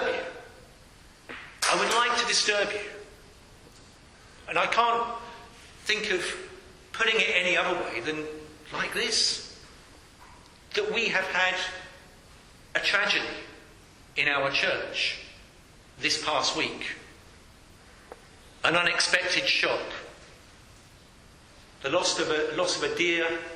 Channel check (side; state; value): both; identical; correlation 1.00